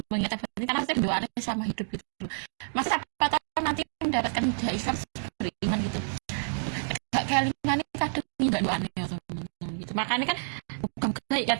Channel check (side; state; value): left; silent; digital silence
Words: mengingat Seventeen karena saya bendoaan sama hidup gitu loh. Mas siapa tahu nanti mendapatkan hidayah Islam beriman gitu. Gak kelingan ini kadang nggak doanya ya teman-teman gitu. Makanya kan bukan kayak ya